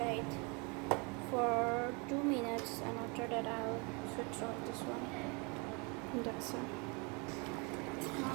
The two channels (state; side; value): quieter; left; 31.4 dB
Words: for 2 minutes, and after that I'll switch off this one. That's it.